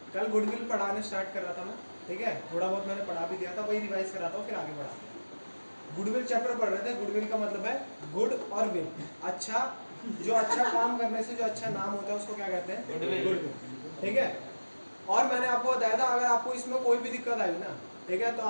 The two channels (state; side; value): inverted; both; correlation -1.00